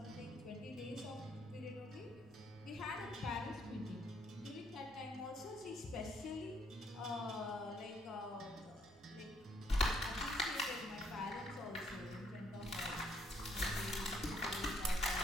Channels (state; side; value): normal; both; correlation 0.69